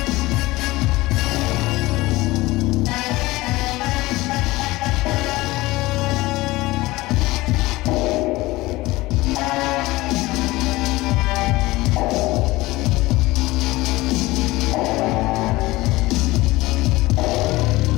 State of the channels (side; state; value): right; quieter; 19.7 dB